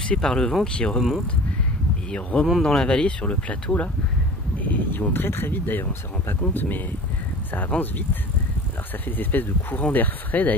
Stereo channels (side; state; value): both; normal; correlation 0.40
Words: par le vent qui remontent. Et ils remontent dans la vallée sur le plateau là. Et ils vont très très vite d'ailleurs, on ne se rend pas compte mais ça avance vite. Alors ça fait des espèces de courants d'air frais